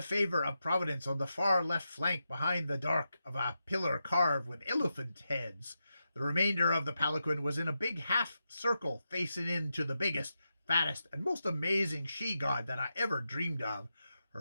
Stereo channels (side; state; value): both; inverted; correlation -0.88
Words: favor of Providence on the far left flank behind the dark of a pillar carved with elephant heads. The remainder of the palanquin was in a big half circle facing into the biggest, fattest, and most amazing she-god that I ever dreamed of.